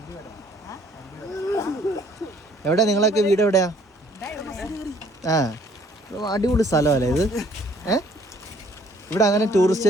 എവിടെ നിങ്ങളൊക്കെ വീട് എവിടെയാ? അടിപൊളി സ്ഥലമല്ലേ ഇത്? ഇവിടെ അങ്ങനെ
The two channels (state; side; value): normal; both; correlation 0.60